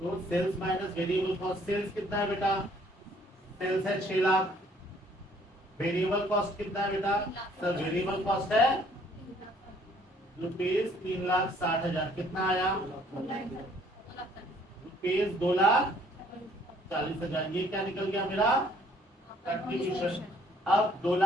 sales minus variable cost. Sales कितना है बेटा? सेल्स है 6 लाख। वेरिएबल कॉस्ट कितना है बेटा? सर वेरिएबल कॉस्ट है ₹3,60,000। कितना आया? ₹2,40,000। ये क्या निकल गया मेरा? कंट्रीब्यूशन। अब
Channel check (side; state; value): both; normal; correlation 0.61